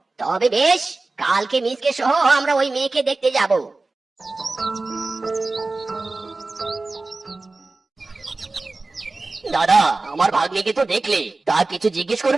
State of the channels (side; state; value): left; quieter; 3.4 dB